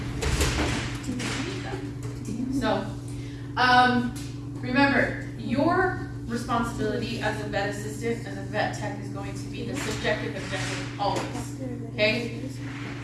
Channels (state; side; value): identical; both; correlation 1.00